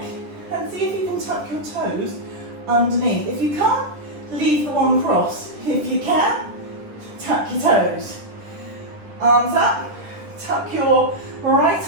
And see if you can tuck your toes underneath. If you can't, leave the one cross. If you can, tuck your toes. Arms up, tuck your right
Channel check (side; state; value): left; late; 10 ms